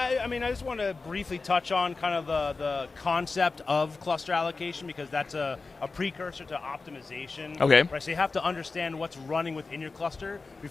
I mean, I just want to briefly touch on kind of the concept of cluster allocation because that's a precursor to optimization. Okay. Right, so you have to understand what's running within your cluster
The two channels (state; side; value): quieter; right; 4.0 dB